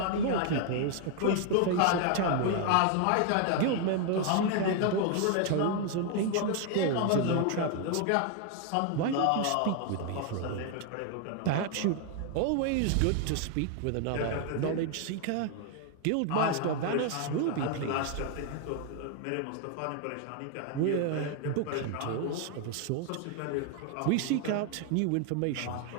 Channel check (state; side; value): different; both; correlation 0.00